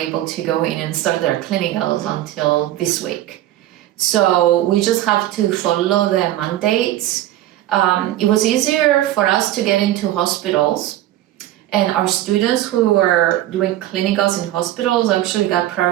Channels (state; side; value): quieter; left; 14.0 dB